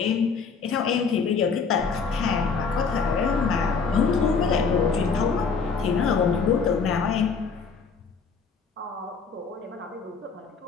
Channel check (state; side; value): quieter; right; 5.3 dB